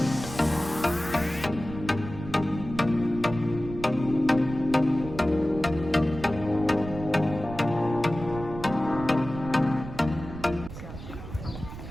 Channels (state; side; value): noise; right; rumble, 11 dB below the sound